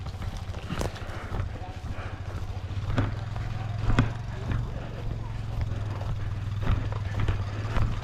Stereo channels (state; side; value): identical; both; correlation 1.00